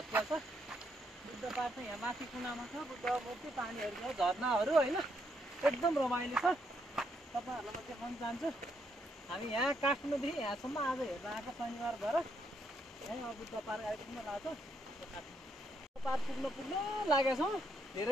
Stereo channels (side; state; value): both; normal; correlation 0.76